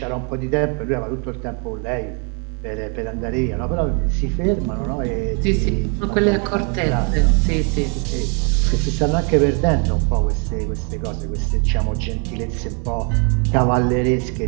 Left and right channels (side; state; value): left; quieter; 37.3 dB